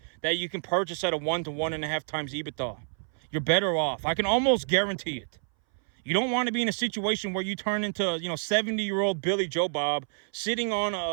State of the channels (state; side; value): silent; left; 59 dB below the other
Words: that you can purchase at a 1 to 1.5 times EBITDA. You're better off. I can almost guarantee it. You don't want to be in a situation where you turn into, 70-year-old Billy Joe Bob sitting on